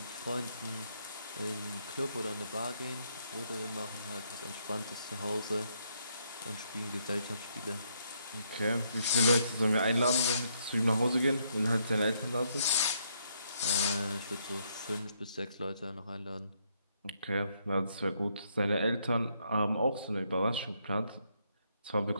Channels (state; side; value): inverted; both; correlation -0.73